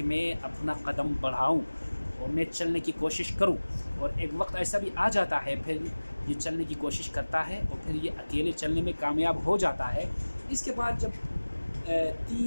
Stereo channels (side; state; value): both; inverted; correlation -1.00